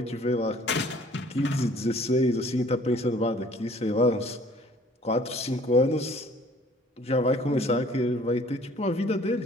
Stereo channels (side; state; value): both; normal; correlation 0.55